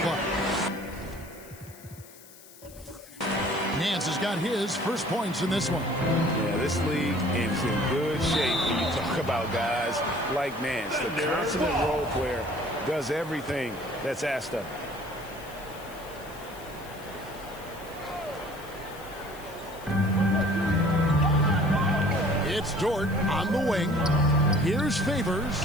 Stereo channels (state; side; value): noise; left; hiss, 21 dB below the sound